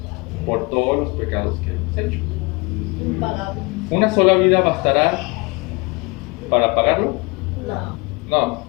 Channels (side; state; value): right; quieter; 27.2 dB